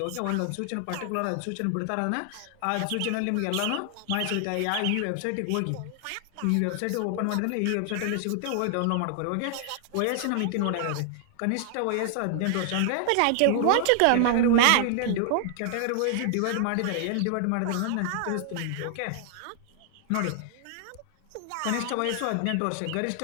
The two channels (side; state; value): both; different; correlation 0.00